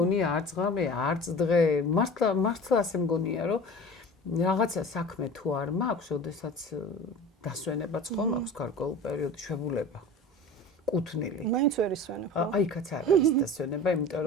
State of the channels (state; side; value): normal; both; correlation 0.38